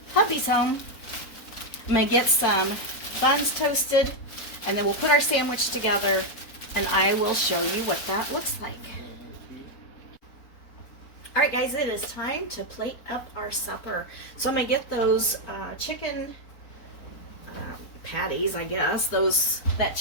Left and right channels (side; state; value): right; late; 4.1 ms